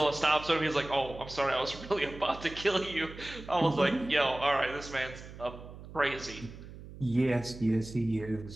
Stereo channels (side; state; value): right; noise; hum, 15 dB below the sound